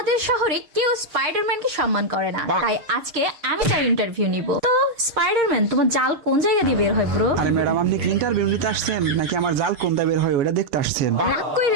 শহরে কেউ স্পাইডারম্যানকে সম্মান করে না, তাই আজকে আমি তার ইন্টারভিউ নিব। তো স্পাইডারম্যান তোমার জাল কোন জায়গা দিয়ে বের হয় ব্রো? আরে ম্যাডাম আপনি কি ইন্টারভিউ নিতে আসছেন নাকি আমার জাল কোনটা বের হয় ওটা দেখতে আসছেন? রাগ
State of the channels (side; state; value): left; late; 6.5 ms